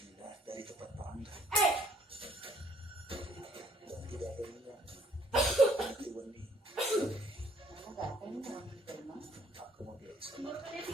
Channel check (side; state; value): both; normal; correlation 0.62